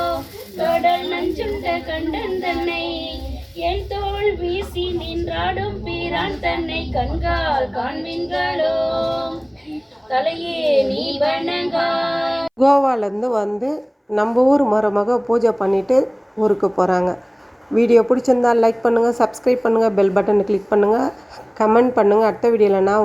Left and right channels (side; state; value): both; identical; correlation 1.00